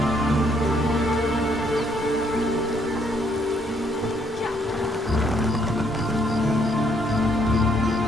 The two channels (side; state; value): both; normal; correlation 0.69